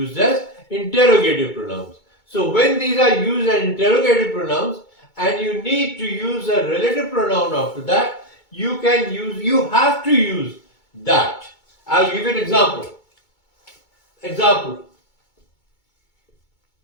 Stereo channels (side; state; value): right; late; 2.2 ms